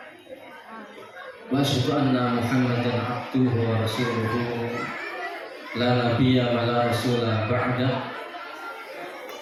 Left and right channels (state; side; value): identical; both; correlation 1.00